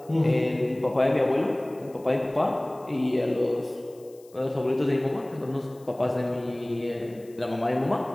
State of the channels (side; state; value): left; noise; hiss, 28 dB below the sound